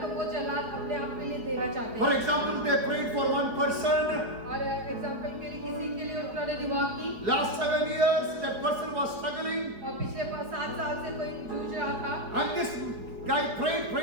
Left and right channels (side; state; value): left; late; 4.8 ms